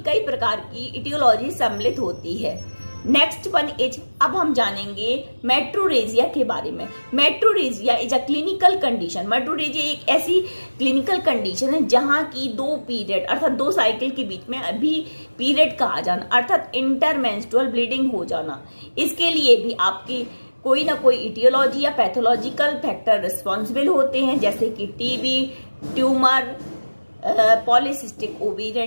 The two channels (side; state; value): both; inverted; correlation -1.00